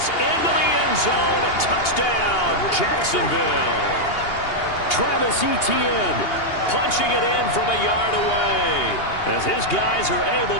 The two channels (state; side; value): late; right; 2.8 ms